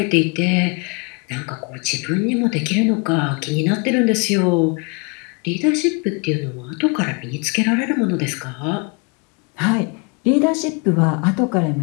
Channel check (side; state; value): right; quieter; 31.7 dB